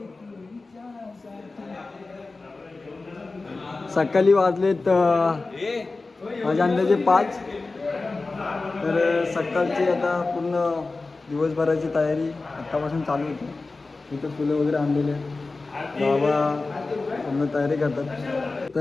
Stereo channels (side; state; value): right; quieter; 3.6 dB